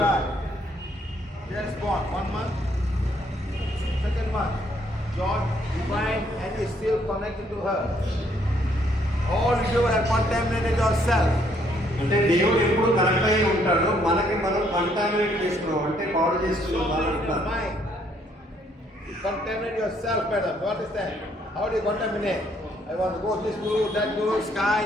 Just born 1 month, second month. God divine and is still connected to her. All you have contaminated yourself. అంటే దేవుడు ఎప్పుడు కనెక్ట్ అయి ఉంటాడు మనకి మనం కంటామినేట్ చేసుకున్నాం అంటే పాడు So చేసుకున్నాం in your mind. contaminate yourself, madam. You understand? How do you contaminate? I want to go this guru, that guru, sky,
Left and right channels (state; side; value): normal; both; correlation 0.68